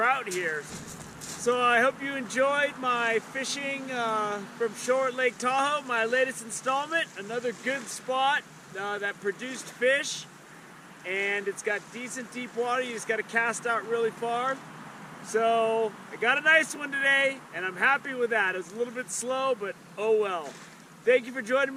here. So I hope you enjoyed my fishing from shore at Lake Tahoe, my latest installment. Another good spot that produced fish, and it's got decent deep water. You just got to cast out really far. So I got a nice one today, and I'm happy with that. It was a little bit slow, but oh well. Thank you for joining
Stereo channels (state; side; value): identical; both; correlation 1.00